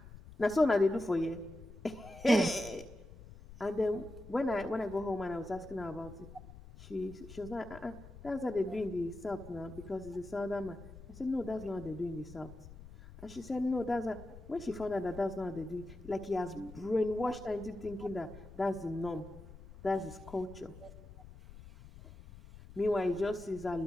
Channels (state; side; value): noise; left; rumble, 16 dB below the sound